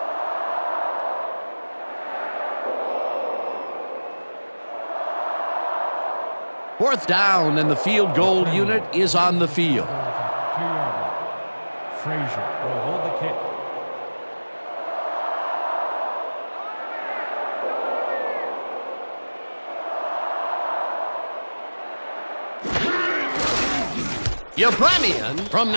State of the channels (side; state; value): both; inverted; correlation -1.00